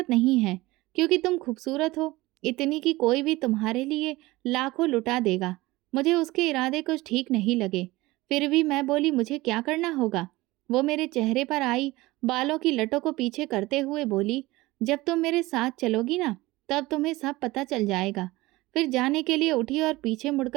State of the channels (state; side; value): quieter; left; 19.9 dB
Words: नहीं है, क्योंकि तुम खूबसूरत हो, इतनी कि कोई भी तुम्हारे लिए लाखों लुटा देगा।" मुझे उसके इरादे कुछ ठीक नहीं लगे। फिर भी मैं बोली, "मुझे क्या करना होगा?" वो मेरे चेहरे पर आई बालों की लटों को पीछे करते हुए बोली, "जब तुम मेरे साथ चलोगी ना, तब तुम्हें सब पता चल जाएगा।" फिर जाने के लिए उठी और पीछे